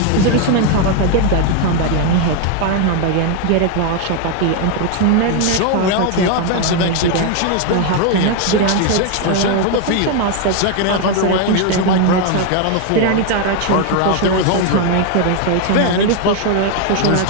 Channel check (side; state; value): both; different; correlation 0.01